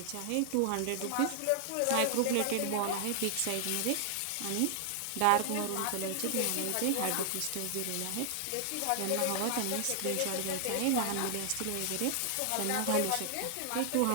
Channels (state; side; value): different; both; correlation 0.00